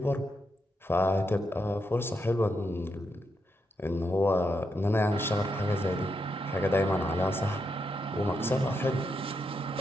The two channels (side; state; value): both; normal; correlation 0.82